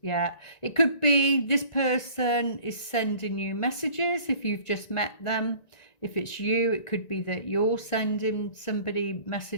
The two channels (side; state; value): right; late; 1.9 ms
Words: Yeah, it could be this person is sending you messages if you've just met them. If it's you, it could be that you're sending somebody